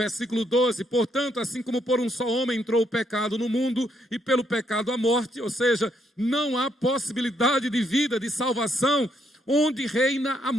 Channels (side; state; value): both; normal; correlation 0.74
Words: 12. Portanto, assim como por um só homem entrou o pecado no mundo, e pelo pecado a morte, ou seja, não há possibilidade de vida, de salvação, onde reina a